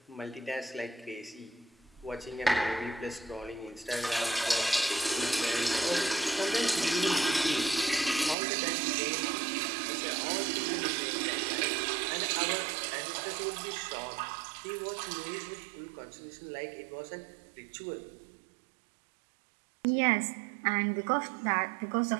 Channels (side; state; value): left; drops out; at 8.3 s